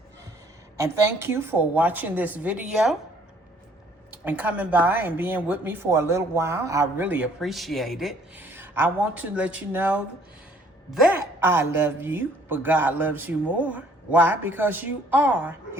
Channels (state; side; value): normal; both; correlation 0.60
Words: And thank you for watching this video and coming by and being with me for a little while. I really appreciate it. I want to let you know that I love you, but God loves you more. Why? Because you are